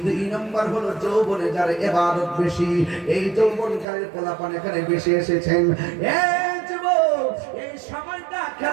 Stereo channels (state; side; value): drops out; left; at 3.9 s